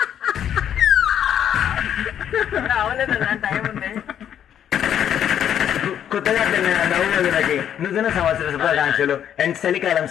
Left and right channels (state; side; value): quieter; right; 9.6 dB